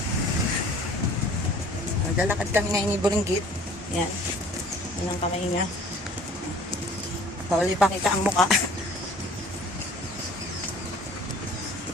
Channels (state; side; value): normal; both; correlation 0.50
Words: Naglalakad kami ngayon ni Buringgit. Yan, yan ang kamay niya. Huli pa kita ang muka.